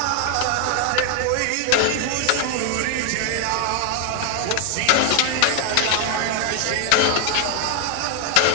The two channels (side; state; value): both; different; correlation 0.01